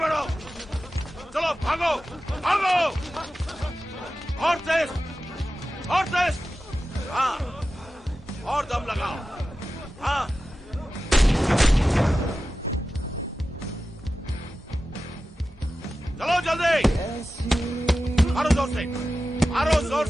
चलो भागो भागो, और तेज, और तेज, हाँ, और दम लगाओ, हाँ, चलो जल्दी, मारो जोर से, मारो जोर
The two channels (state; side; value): normal; both; correlation 0.93